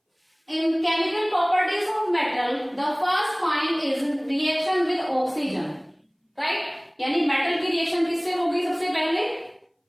in chemical properties of metal, the first point is reaction with oxygen, right? यानी metal की reaction किससे होगी? सबसे पहले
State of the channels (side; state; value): both; identical; correlation 1.00